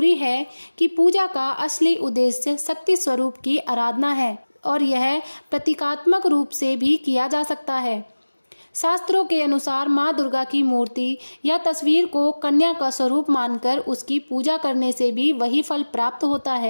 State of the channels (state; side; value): inverted; both; correlation -1.00